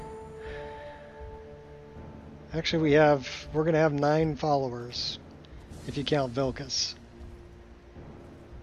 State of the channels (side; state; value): both; identical; correlation 1.00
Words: Actually, we're going to have 9 followers if you count Vilkas.